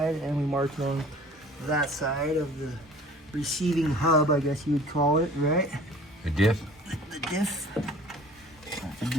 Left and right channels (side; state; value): both; normal; correlation 0.48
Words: and we marked it on that side of the receiving hub, I guess you would call it, right? The diff? The diff. Not the